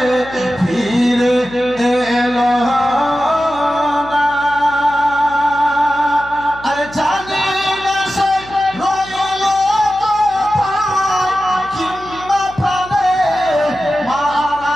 ফিরে এলো না। আরে জানি না সে রইল কোথায় কিংবা প্রাণে মারা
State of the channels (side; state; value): left; noise; hum, 19 dB below the sound